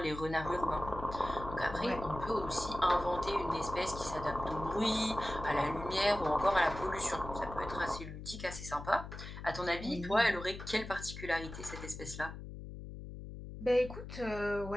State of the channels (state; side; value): noise; left; hum, 10 dB below the sound